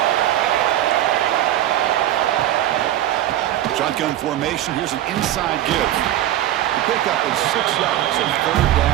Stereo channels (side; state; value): left; quieter; 13.0 dB